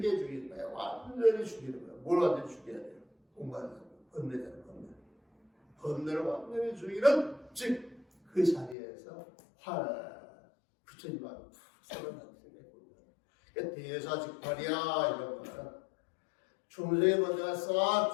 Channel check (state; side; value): drops out; right; at 8.8 s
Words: 죽이는 거야. 완전히 죽이는 거야. 뭘 완전히 죽여야 돼요? 공간을 번뇌되는 번뇌. 번뇌를 완전히 죽이는 즉 그 자리에서 부처님 마음이 푹 살아나는 생각입니다. 그러니까 대사즉발이야 이런 거는 중생의 번뇌가 싹